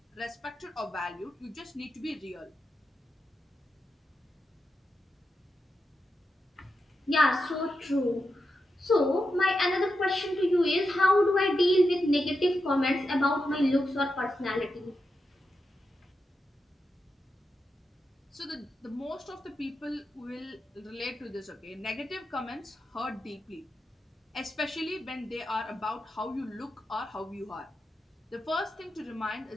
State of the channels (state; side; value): normal; both; correlation 0.88